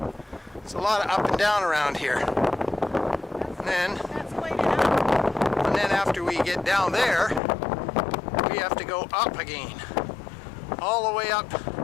It's a lot of up and down around here. And then after we get down there, we have to go up again. All the way up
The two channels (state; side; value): drops out; right; at 7.4 s